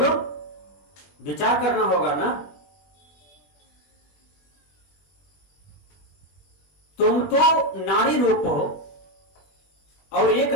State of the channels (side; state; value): right; late; 20 ms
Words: विचार करना होगा ना। तुम तो नारी रूप हो और एक